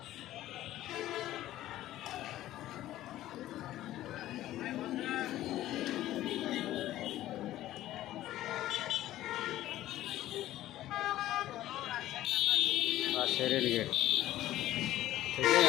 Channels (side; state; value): right; quieter; 14.3 dB